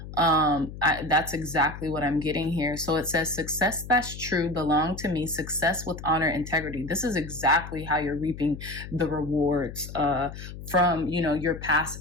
That's exactly what I'm getting here. So it says success that's true belong to me, success with honor, integrity. This is exactly how you're reaping the rewards from your past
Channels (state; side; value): noise; left; hum, 11 dB below the sound